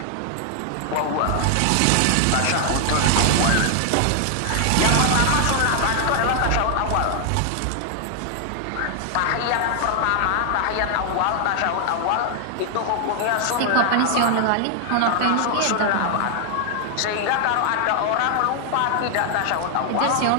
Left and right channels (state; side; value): different; both; correlation 0.00